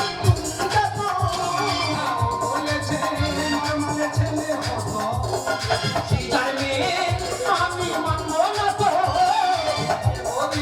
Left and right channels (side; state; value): both; identical; correlation 1.00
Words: চুমুকাতো হ্যাঁ, ও বলেছে নরমালে ছেলে হতো। সিজার মেয়ে আমি মানবো না তো।